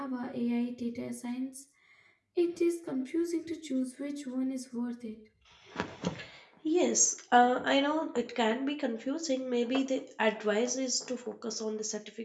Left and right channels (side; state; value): both; identical; correlation 1.00